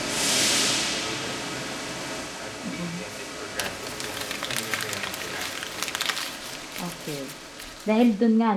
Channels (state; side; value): identical; both; correlation 1.00